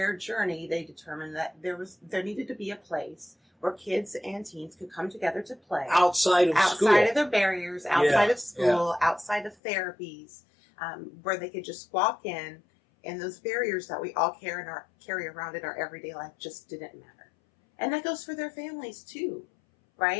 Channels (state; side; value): drops out; right; at 9.6 s